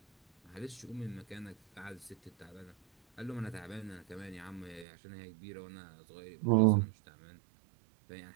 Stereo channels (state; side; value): drops out; left; at 4.9 s